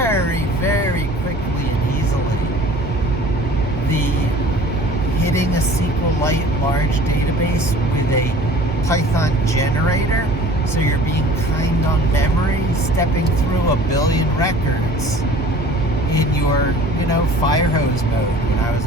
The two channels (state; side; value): normal; both; correlation 0.46